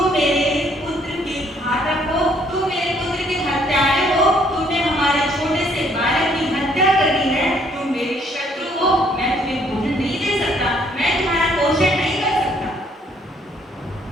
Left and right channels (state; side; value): normal; both; correlation 0.65